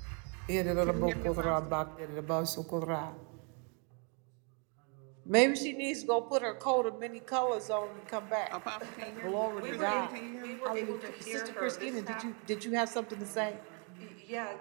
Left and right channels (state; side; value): quieter; left; 37.1 dB